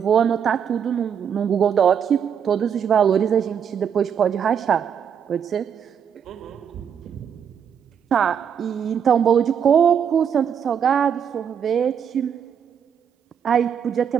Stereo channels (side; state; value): left; quieter; 7.9 dB